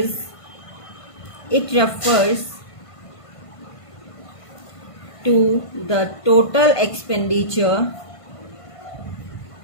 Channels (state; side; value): late; right; 1.5 ms